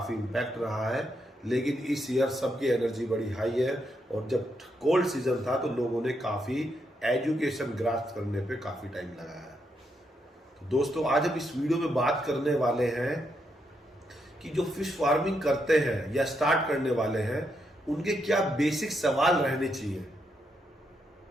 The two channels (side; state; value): both; normal; correlation 0.80